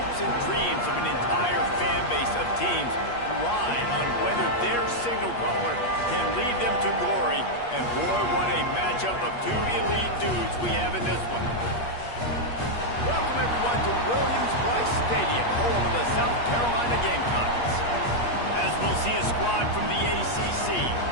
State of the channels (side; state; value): right; late; 8.4 ms